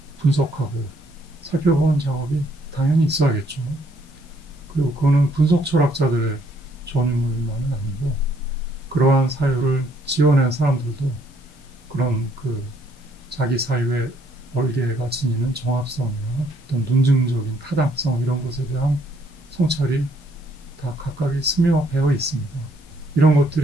분석하고 살펴보는 작업이 당연히 있어야겠죠. 그리고 그거는 분석 철학자들의 전유물만은 아니고 그러한 사유를 지어낸 사람들도 그런 그 자기 사유의 얼개가 지니는 정합성이나 어떤 논증적인 타당성 이런 것에 대한 성찰이 다 각각이 스며 배어 있습니다. 이런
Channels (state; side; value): normal; both; correlation 0.67